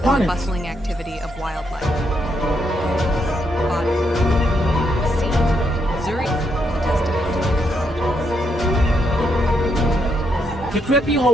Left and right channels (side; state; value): both; normal; correlation 0.77